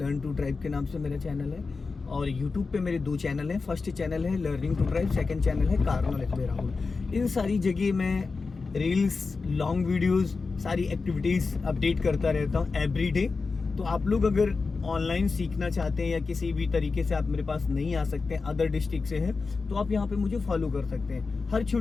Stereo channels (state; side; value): quieter; right; 4.3 dB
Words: टू ड्राइव के नाम से मेरा चैनल है। और यूट्यूब पे मेरे 2 चैनल हैं। फर्स्ट चैनल है learning to drive, second channel है कार नॉलेज बाय राहुल। इन सारी जगह मैं रील्स, लॉन्ग वीडियोस, सारी एक्टिविटीज़ अपडेट करता रहता हूँ एवरी डे। तो आप लोग अगर ऑनलाइन सीखना चाहते हैं या किसी भी तरीके से आप मेरे पास नहीं आ सकते हैं, अदर डिस्ट्रिक्ट से हैं, तो आप यहाँ पे मुझे फॉलो कर सकते हैं। हर